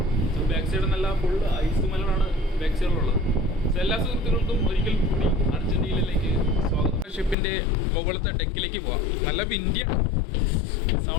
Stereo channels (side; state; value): right; drops out; at 7.4 s